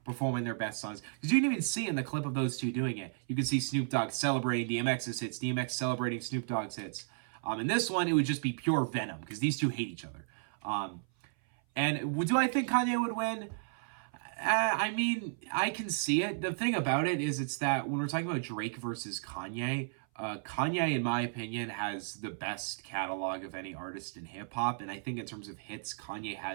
performing their best songs. Because you can even see in the clip of those two doing it, you can see Snoop Dogg celebrating DMX's hits, DMX celebrating Snoop Dogg's hits. In this one, it would just be pure venom, because these two hate each other. And do I think Kanye would win? I mean, I can see it. The thing about it is it's that when we're talking about Drake versus Kanye, Kanye, in my opinion, has the best catalog of any artist in hip-hop. And I think in terms of hits, Kanye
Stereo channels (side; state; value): left; silent; 55 dB below the other